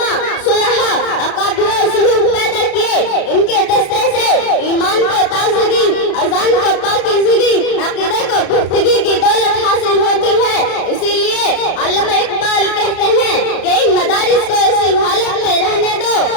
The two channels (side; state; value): right; late; 33 ms